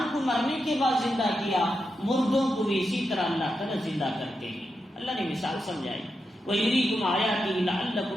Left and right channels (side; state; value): both; normal; correlation 0.87